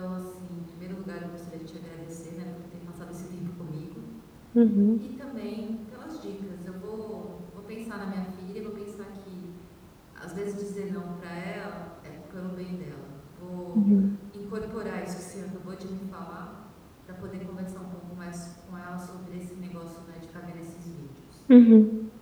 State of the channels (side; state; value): both; identical; correlation 1.00